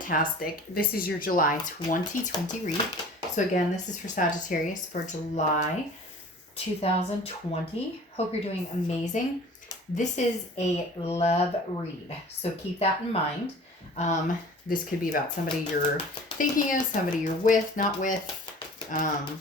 This is your July 2020 read. So again, this is for Sagittarius for July 2020. Hope you're doing amazing. This is a love read, so keep that in mind. This could be about somebody you're thinking of, somebody you're with, not with,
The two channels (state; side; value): normal; both; correlation 0.44